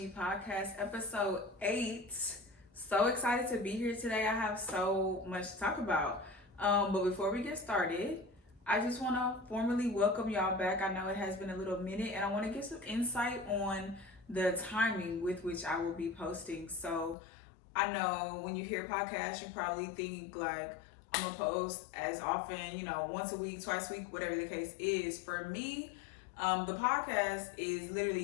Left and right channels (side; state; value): right; drops out; at 17.2 s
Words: Podcast, episode 8. So excited to be here today. I have so much to talk about. But before we get started, I just want to formally welcome y'all back. I know it has been a little minute, and I want to get some insight on the timing with which I will be posting. So I know when you hear podcasts, you probably think like I'm gonna post as often, once a week, twice a week, whatever the case is. For me, the podcast is